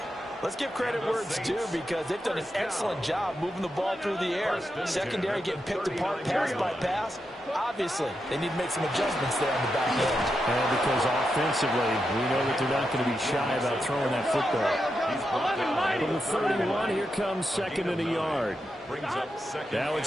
let's give credit where it's due because they've done an excellent job moving the ball through the air. Secondary getting picked apart pass by pass. Obviously, they need to make some adjustments there on the back end. And because offensively, we know that they're not going to be shy about throwing that football. From the 31, here comes 2nd and a yard. Now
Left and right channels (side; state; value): both; normal; correlation 0.86